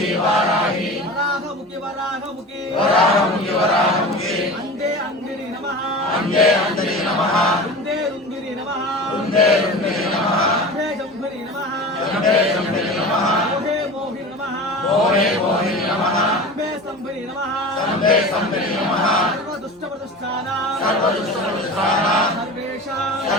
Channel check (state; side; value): normal; both; correlation 0.33